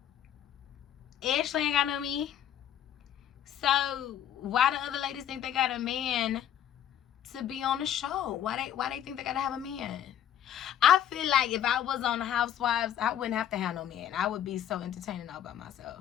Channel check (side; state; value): right; quieter; 10.3 dB